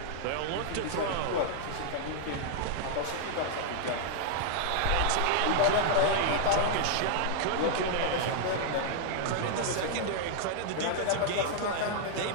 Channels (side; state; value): both; different; correlation -0.01